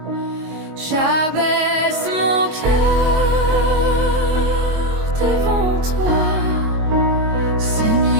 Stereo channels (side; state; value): left; late; 22 ms